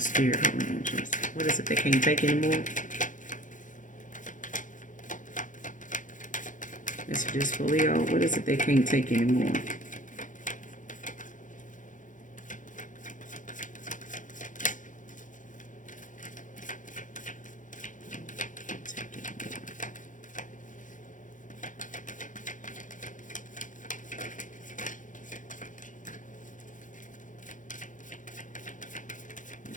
Holy Angels. What is it they can't take anymore? Messages for Leo. What is it they can't take anymore?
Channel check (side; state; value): right; late; 0.37 ms